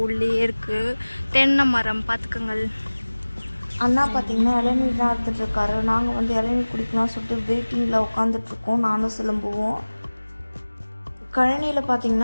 உள்ளே இருக்குது தென்னை மரம், பார்த்துக்கங்கள். அண்ணா பார்த்தீங்கன்னா இளநீர் தான் எடுத்துகிட்ருக்காரு. நாங்கள் வந்து இளநீர் குடிக்கலாம் சொல்லிட்டு வெயிட்டிங்கில் உட்காந்துட்ருக்கோம், நானும் சிலம்புவோம். கழனியில்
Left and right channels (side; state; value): both; inverted; correlation -1.00